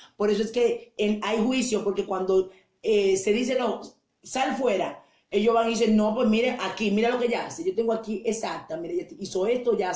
Por eso es que hay juicio, porque cuando se dice, no, sal fuera, ellos van y dicen, no, pues mire, aquí, mira lo que ella hace. Yo tengo aquí, exacta, mire, ella hizo esto, ya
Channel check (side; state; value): both; identical; correlation 1.00